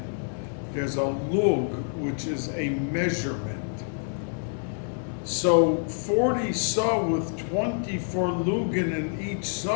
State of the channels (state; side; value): silent; right; digital silence